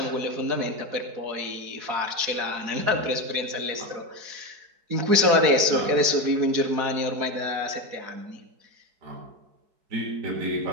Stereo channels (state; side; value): late; left; 4.7 ms